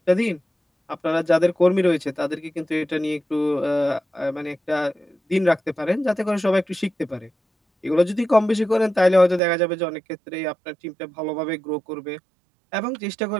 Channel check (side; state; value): left; drops out; at 9.4 s